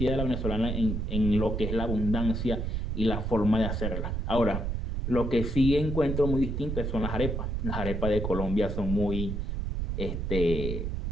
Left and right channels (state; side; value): noise; right; rumble, 2 dB below the sound